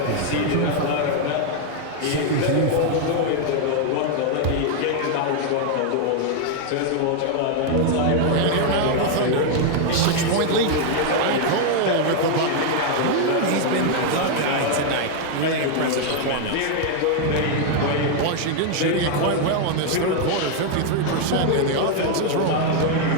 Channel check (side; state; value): both; different; correlation 0.00